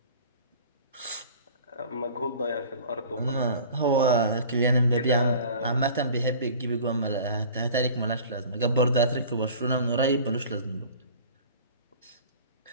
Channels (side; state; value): both; inverted; correlation -0.44